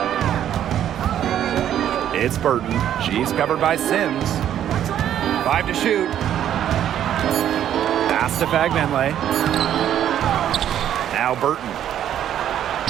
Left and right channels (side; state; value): left; quieter; 10.6 dB